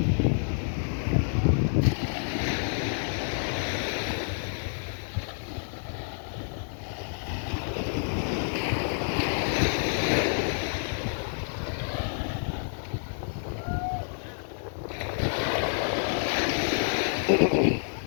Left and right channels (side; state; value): right; silent; digital silence